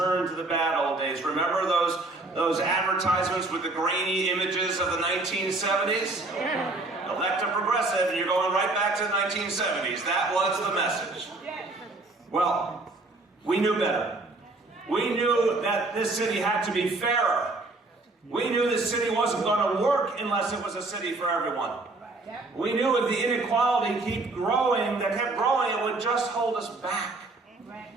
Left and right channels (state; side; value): quieter; left; 3.1 dB